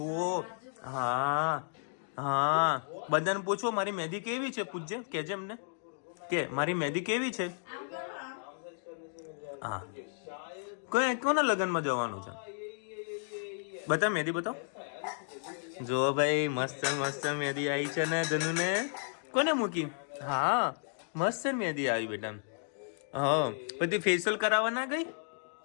હા, બધાને પૂછો મારી મહેંદી કેવી છે. પૂછજે, કહેજે એમને કે મારી મહેંદી કેવી છે. હા, કોના લગ્નમાં જવાનું છે? બતા મહેંદી બતાવો. જો ભાઈ મસ્ત મહેંદી આવી છે ને ધનુને. કોને મૂકી? હા, મસ્ત મહેંદી આવી બેટા. હા, પછી ફેશિયલ કરાવવા ના ગઈ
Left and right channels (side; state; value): right; silent; digital silence